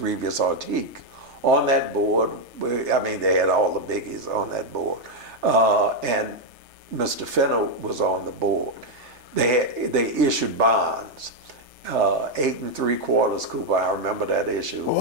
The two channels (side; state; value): left; late; 3.3 ms